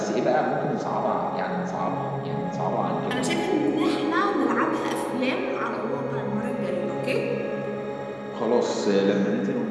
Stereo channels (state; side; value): identical; both; correlation 1.00